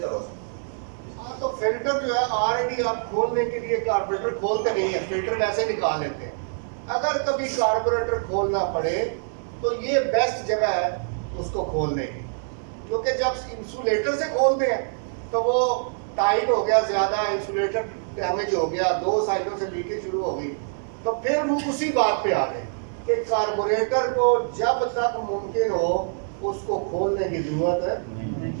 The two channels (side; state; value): left; silent; digital silence